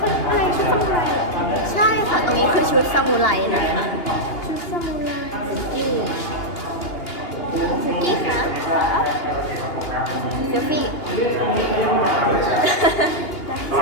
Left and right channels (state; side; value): late; right; 2.8 ms